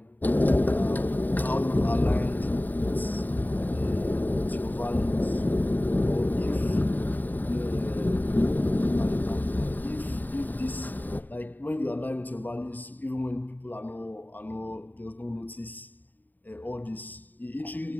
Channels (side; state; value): right; late; 0.087 ms